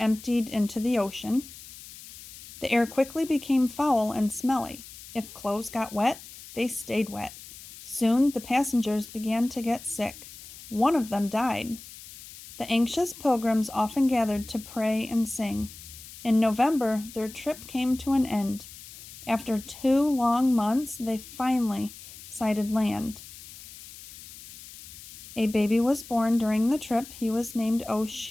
emptied into the ocean. The air quickly became foul and smelly. If clothes got wet, they stayed wet. Soon the passengers began to get sick. One of them died. The anxious pilgrims often gathered to pray and sing. In November, their trip came to an end. After 2 long months, they finally sighted land. A baby was born during the trip. He was named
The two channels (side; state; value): left; noise; hiss, 16 dB below the sound